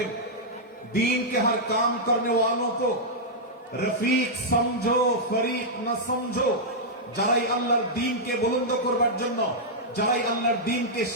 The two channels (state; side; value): normal; both; correlation -0.08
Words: दीन के हर काम करने वालों को रफीक समझो, फरीक न समझो। যারাই আল্লাহর দ্বীনকে বুলন্দ করবার জন্য, যারাই আল্লাহর দ্বীনকে